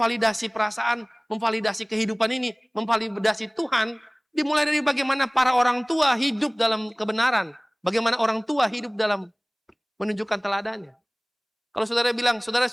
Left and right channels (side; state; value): both; identical; correlation 1.00